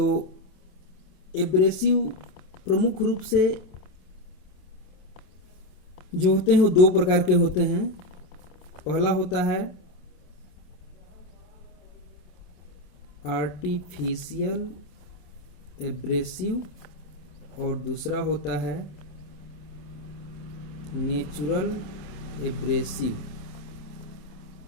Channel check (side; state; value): right; late; 27 ms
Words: एब्रेसिव प्रमुख रूप से जो होते हैं वो दो प्रकार के होते हैं। पहला होता है आर्टिफिशियल एब्रेसिव और दूसरा होता है नेचुरल एब्रेसिव।